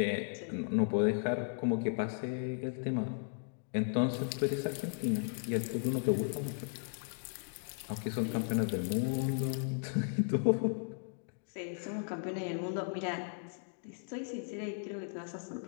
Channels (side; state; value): right; silent; digital silence